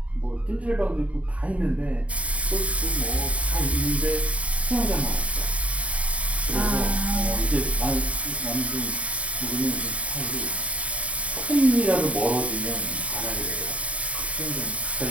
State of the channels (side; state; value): left; late; 0.065 ms